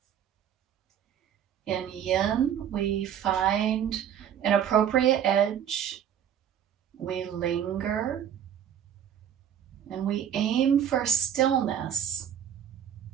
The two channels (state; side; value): quieter; left; 9.4 dB